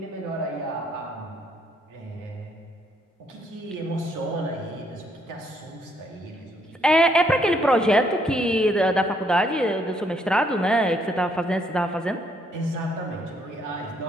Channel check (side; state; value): both; normal; correlation 0.70